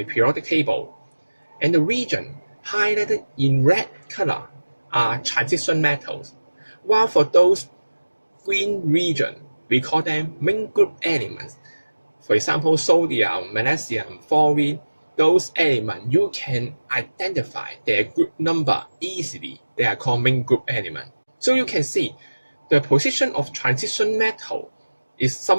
periodic table, and the region highlighted in red color are transition metals, while for those green region, we call them main group elements. For example, sodium, magnesium, fluorine, those elements you can identify their group number easily. They are called main group elements. So you can see the position of transition metal is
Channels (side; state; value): both; inverted; correlation -1.00